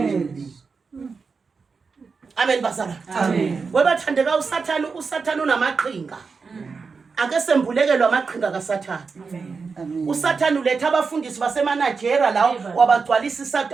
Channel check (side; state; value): left; quieter; 4.9 dB